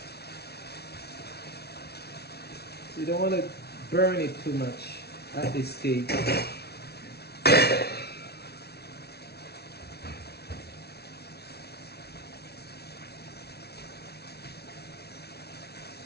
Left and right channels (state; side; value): late; right; 0.47 ms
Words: So you don't want to burn it too much at this stage.